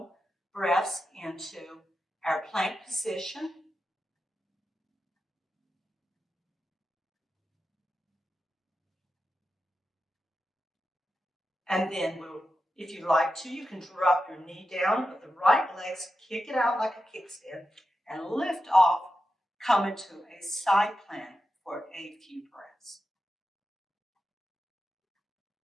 breaths into our plank position. And then if you like to, you can drop your knee down with the right legs, kick it out like a kickstand, and lift off, come into a side plank for a few breaths.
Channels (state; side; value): normal; both; correlation 0.90